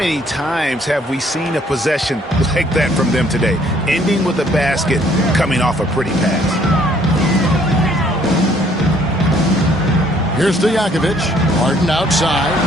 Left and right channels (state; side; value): normal; both; correlation 0.62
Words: times have we seen a possession like that from them today? Ending with a basket, coming off a pretty pass. Here's Stojakovic. Harden outside.